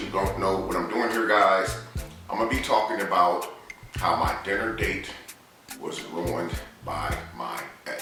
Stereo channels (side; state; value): both; identical; correlation 1.00